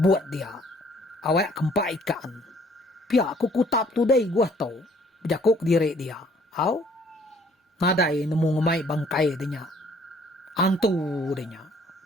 buat dia. Awak kempak ikan. Pia aku kutap tu dai gua tau. Berjakuk diri dia. Au? Nadai nemu ngemai bangkai dia. Antu dia.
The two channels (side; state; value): both; normal; correlation 0.60